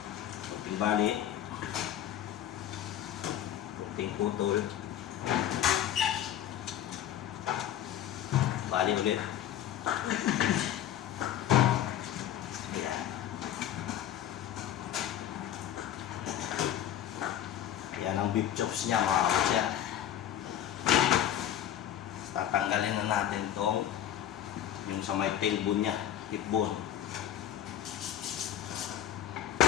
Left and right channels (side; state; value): right; quieter; 11.0 dB